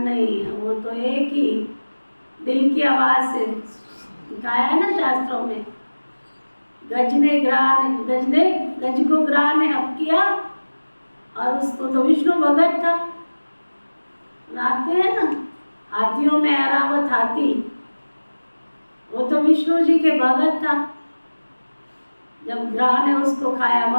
नहीं है। वो तो एक ही दिल की आवाज से कहा है ना शास्त्रों में, गज को ग्राह ने हप किया। और उसको तो विष्णु भगत था, सुनाते हैं ना, हाथियों में ऐरावत हाथी, वो तो विष्णु जी के भगत था। जब ग्राह ने उसको खाया,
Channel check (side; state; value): both; inverted; correlation -1.00